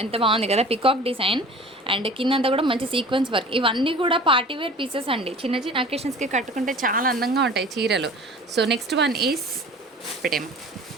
ఎంత బాగుంది కదా, పికాక్ డిజైన్ అండ్ కిందంతా కూడా మంచి సీక్వెన్స్ వర్క్. ఇవన్నీ కూడా పార్టీవేర్ పీసెస్ అండి, చిన్న చిన్న అకేషన్స్కి కట్టుకుంటే చాలా అందంగా ఉంటాయి చీరలు. సో నెక్స్ట్ వన్ ఈస్ పెట్టేమో.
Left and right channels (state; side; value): normal; both; correlation 0.42